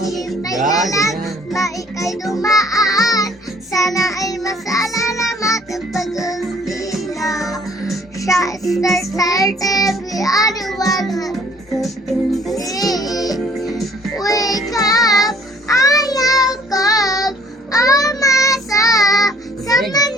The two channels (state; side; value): normal; both; correlation 0.57